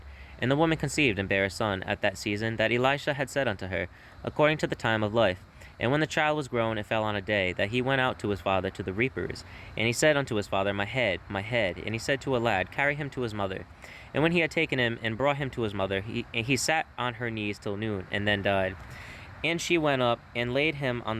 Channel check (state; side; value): identical; both; correlation 1.00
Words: And the woman conceived and bare a son at that season that Elisha had said unto her, according to the time of life. And when the child was grown, it fell on a day that he went out to his father to the reapers. And he said unto his father, My head, my head. And he said to a lad, Carry him to his mother. And when he had taken him and brought him to his mother, he sat on her knees till noon, and then died. And she went up and laid him